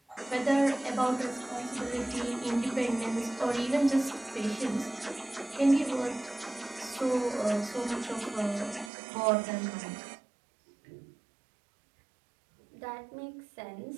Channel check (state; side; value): drops out; left; at 8.9 s